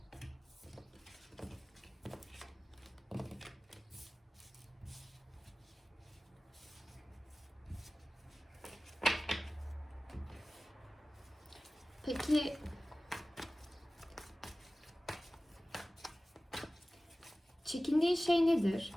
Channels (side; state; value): both; normal; correlation 0.97